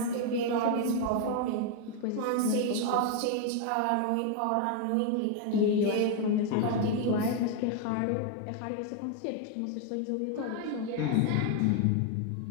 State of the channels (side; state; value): both; different; correlation 0.00